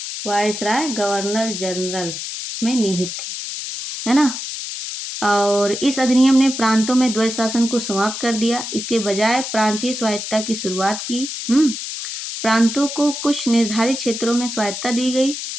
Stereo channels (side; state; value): left; noise; hiss, 6 dB below the sound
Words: वायसराय गवर्नर जनरल में निहित थी, है ना। और इस अधिनियम ने प्रांतों में द्वैध शासन को समाप्त कर दिया। इसके बजाय प्रांतीय स्वायत्तता की शुरुआत की। प्रांतों को कुछ निर्धारित क्षेत्रों में स्वायत्तता